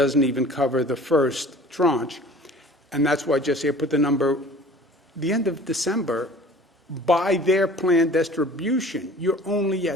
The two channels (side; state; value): both; normal; correlation 0.46